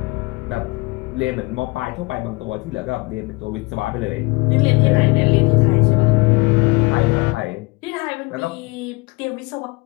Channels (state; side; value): quieter; right; 25.7 dB